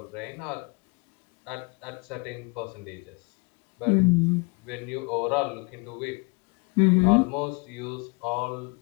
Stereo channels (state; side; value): quieter; right; 31.4 dB